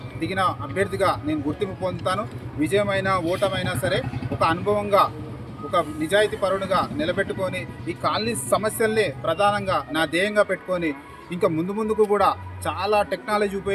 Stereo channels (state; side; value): identical; both; correlation 1.00